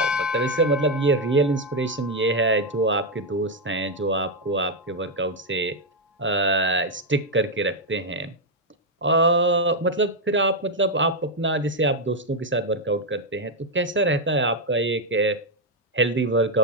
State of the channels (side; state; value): both; normal; correlation 0.02